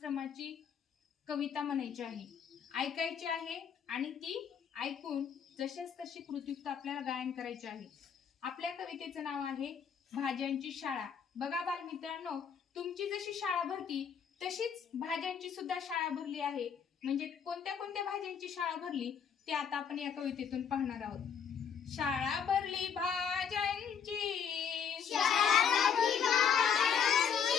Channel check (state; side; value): quieter; right; 7.3 dB